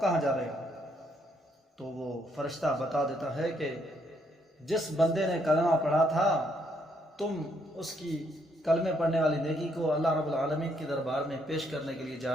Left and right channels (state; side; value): normal; both; correlation 0.72